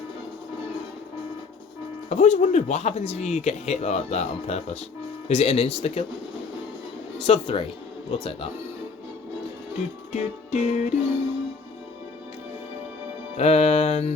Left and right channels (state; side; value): quieter; right; 4.7 dB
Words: I've always wondered what happens if you get hit like that on purpose. Is it an insta-kill? Sub 3. We'll take that. Do, do, do, do.